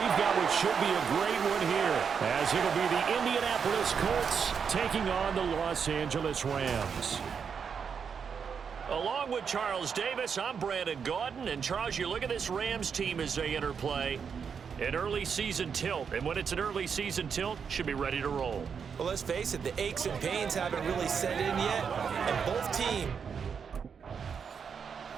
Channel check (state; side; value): quieter; left; 6.6 dB